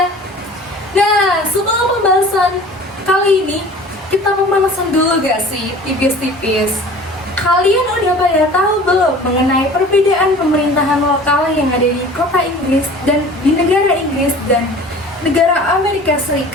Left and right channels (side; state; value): both; normal; correlation 0.44